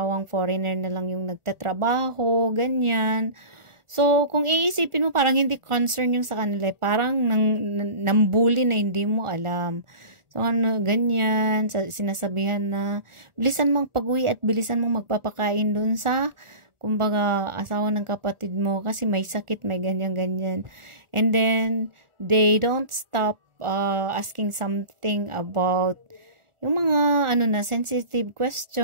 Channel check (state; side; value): late; left; 1.4 ms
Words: foreigner na lang yung nagtatrabaho, ganyan. So, kung iisipin mo, parang hindi concern yung sa kanila, parang nambuli na hindi mo alam. So, ganyan, sinasabihan na, bilisan mong pag-uwi at bilisan mong magpapakain dun sa kumbaga, asawa ng kapatid mo kasi may sakit, may ganyan-ganyan. And then, they don't stop asking something about yung mga, sensitive